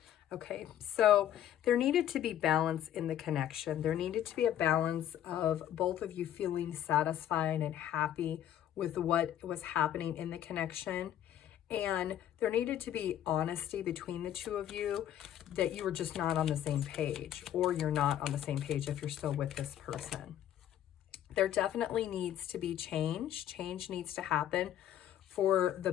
Okay, so there needed to be balance in the connection. There needed to be a balance of both of you feeling satisfied and happy with what was happening in the connection. And there needed to be honesty between the two of you, that you were just not on the same page, or you're not on the same page if you're still with this person. There definitely needs to be change. Change needs to happen for the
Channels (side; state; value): right; quieter; 11.2 dB